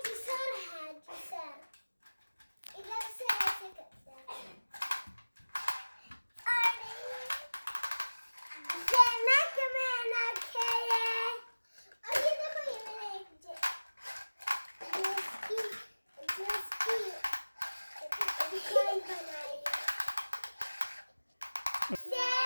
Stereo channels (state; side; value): inverted; both; correlation -1.00